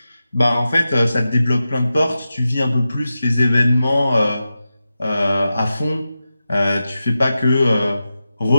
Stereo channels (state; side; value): inverted; both; correlation -0.92